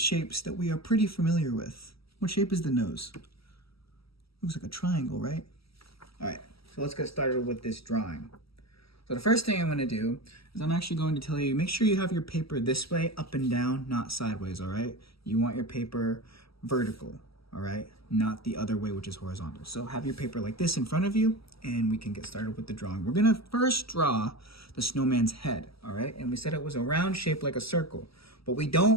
that we are pretty familiar with. What shape is the nose? Looks like a triangle, right? All right, so let's get started with this drawing. So the first thing I'm going to do is I'm actually going to tell you, make sure you have your paper this way, up and down, not sideways, all right? You want your paper vertical, all right? Not the other way, which is horizontal. So have your paper like this in front of you, and we can get started with the drawing. We're going to first draw the snowman's head, all right? And we said it was a round shape like a circle, but we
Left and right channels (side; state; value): right; late; 0.76 ms